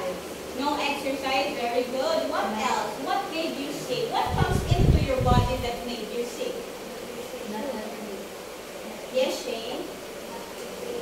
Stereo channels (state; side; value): identical; both; correlation 1.00